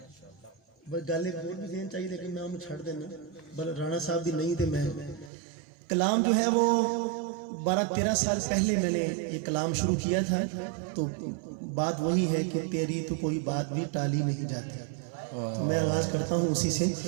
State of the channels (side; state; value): left; drops out; at 5.3 s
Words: بس گل ایک اور بھی ذہن چاہیے، لیکن میں انہوں چھڑ دینا. بل رانا صاحب بھی نہیں تھے. میں کلام جو ہے وہ 12-13 سال پہلے میں نے یہ کلام شروع کیا تھا. تو بات وہی ہے کہ تیری تو کوئی بات بھی ٹالی نہیں جاتی. تو میں آغاز کرتا ہوں اسی سے.